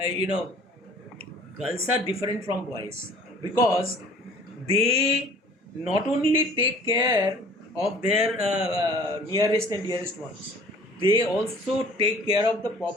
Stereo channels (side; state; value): both; normal; correlation 0.50